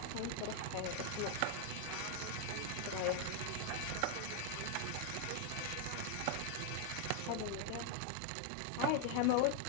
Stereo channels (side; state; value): both; different; correlation 0.00